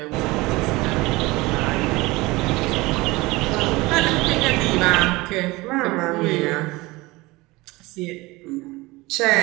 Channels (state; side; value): quieter; left; 21.7 dB